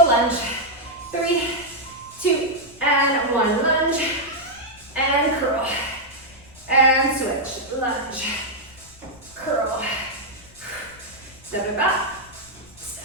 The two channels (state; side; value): noise; left; rumble, 26 dB below the sound